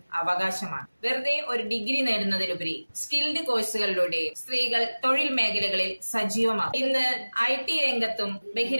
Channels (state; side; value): inverted; both; correlation -1.00